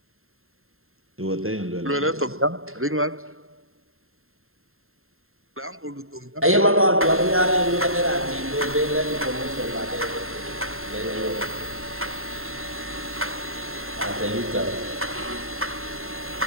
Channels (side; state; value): left; late; 0.61 ms